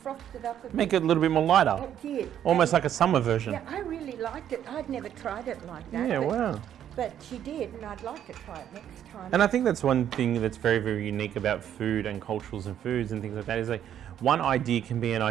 it up a bit. Make it a little bit more lighter. It did. Almost like a summer version. Yeah, I really liked it. I'd never tried it like that. Yeah, wow. But she did, and I'd like to try it next time. And I think that's one thing that's very, very unique about food and cultures and foods and things like that is like one idea can be an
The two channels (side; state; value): left; quieter; 10.1 dB